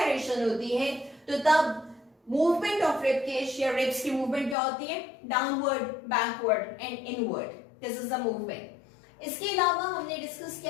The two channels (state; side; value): drops out; right; at 4.5 s